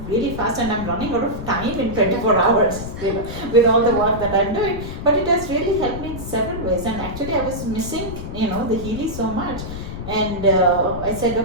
really fast, and I'm running out of time in 24 hours, with all the work that I'm doing. But it has really helped me in several ways. And actually I was missing, the Healy so much. And I said,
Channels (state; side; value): noise; left; rumble, 8 dB below the sound